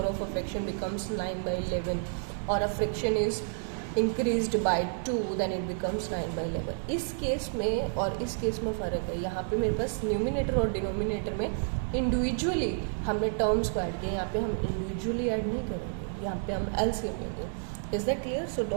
of a fraction becomes 9/11, or a fraction is increased by 2 then it becomes 9/11। इस केस में और इस केस में फ़र्क है, यहाँ पे मेरे पास न्यूमिनेटर और डिनोमिनेटर में इंडिविजुअली हमने टर्म्स को ऐड किया, यहाँ पे हम इंडिविजुअली ऐड नहीं करेंगे, यहाँ पे हम LCM लेंगे। Is that clear? So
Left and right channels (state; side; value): silent; left; digital silence